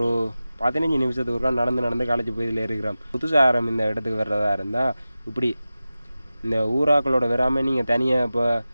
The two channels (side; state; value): both; inverted; correlation -0.95